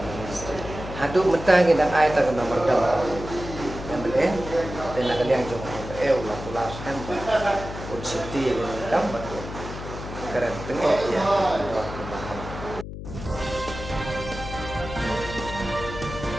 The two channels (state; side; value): noise; left; hum, 9 dB below the sound